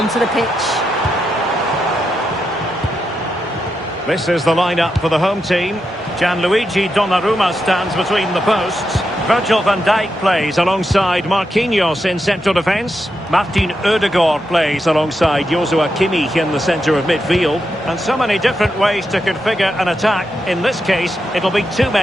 the pitch. This is the lineup for the home team. Gianluigi Donnarumma stands between the posts. Virgil van Dijk plays alongside Marquinhos in central defence. Martin Ødegaard plays alongside Joshua Kimmich in the centre of midfield. And so many different ways to configure an attack. In this case, it'll be two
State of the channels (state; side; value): normal; both; correlation 0.85